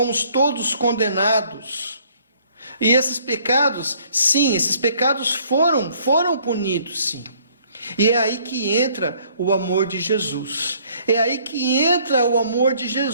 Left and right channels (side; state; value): both; inverted; correlation -0.61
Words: todos condenados. E esses pecados, sim, esses pecados foram punidos, sim. E é aí que entra o amor de Jesus. É aí que entra o amor de